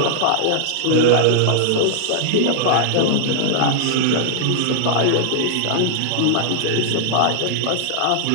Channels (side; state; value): both; different; correlation 0.00